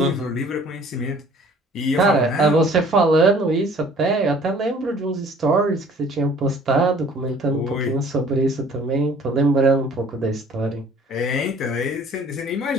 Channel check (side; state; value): both; normal; correlation 0.53